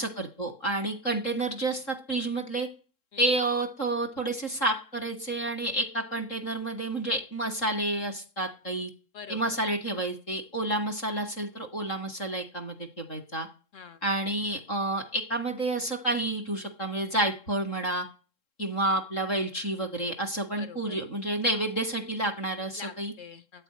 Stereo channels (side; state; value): right; late; 3.7 ms